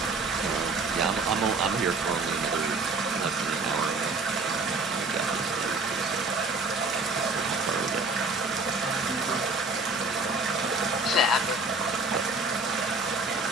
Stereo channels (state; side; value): quieter; left; 3.3 dB